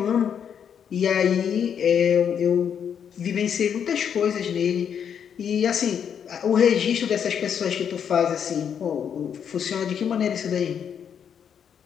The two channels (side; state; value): right; quieter; 8.0 dB